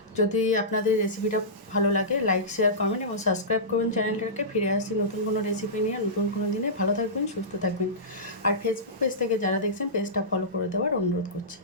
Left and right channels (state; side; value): normal; both; correlation -0.18